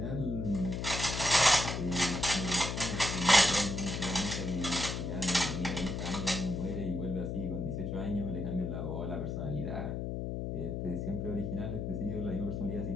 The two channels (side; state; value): left; noise; hum, 3 dB below the sound